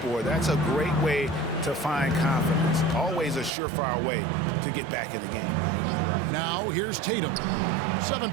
That's a great way to find confidence. Always a surefire way to get back in the game. Now here's Tatum.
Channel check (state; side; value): drops out; left; at 3.5 s